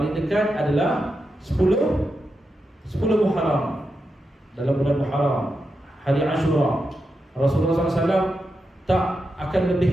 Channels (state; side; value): normal; both; correlation 0.87